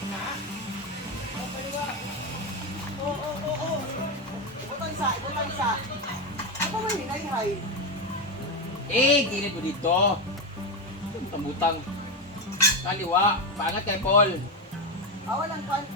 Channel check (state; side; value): normal; both; correlation 0.11